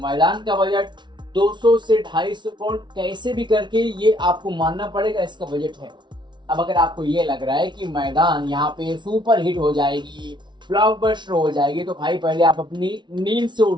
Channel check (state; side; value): late; left; 0.22 ms